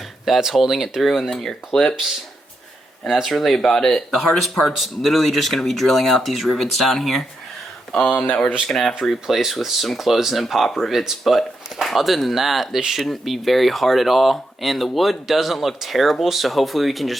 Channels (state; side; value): normal; both; correlation 0.84